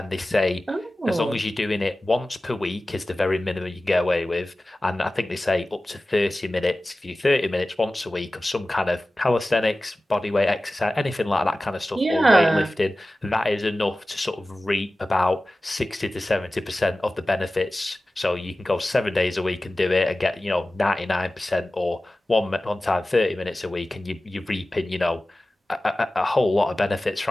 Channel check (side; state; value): both; normal; correlation 0.96